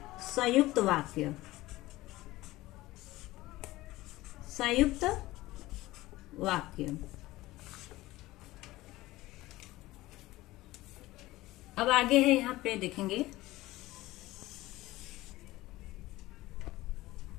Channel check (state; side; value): quieter; right; 18.0 dB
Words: संयुक्त वाक्य, संयुक्त वाक्य। अब आगे है, यहाँ पे देखेंगे